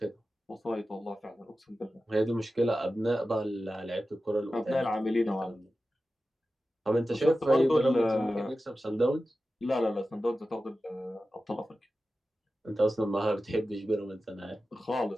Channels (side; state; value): both; normal; correlation 0.94